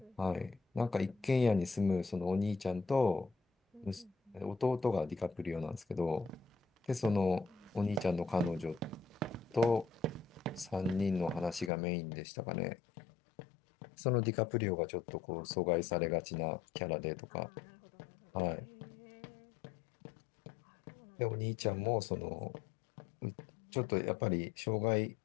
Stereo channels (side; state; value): right; drops out; at 11.7 s